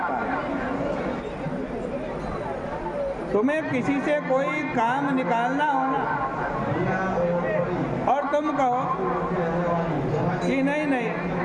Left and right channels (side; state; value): both; identical; correlation 1.00